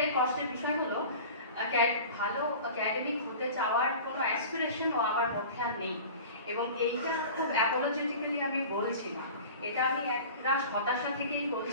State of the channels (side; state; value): both; inverted; correlation -0.38